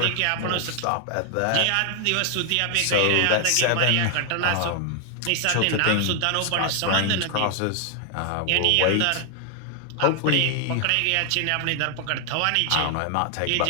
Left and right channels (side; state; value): both; different; correlation 0.00